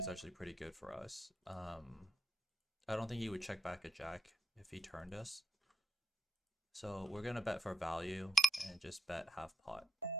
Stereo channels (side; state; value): both; normal; correlation 0.84